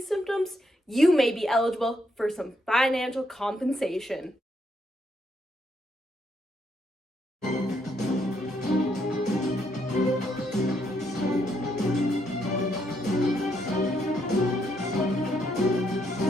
symptoms, you may be eligible for some financial compensation.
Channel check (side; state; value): both; normal; correlation 0.75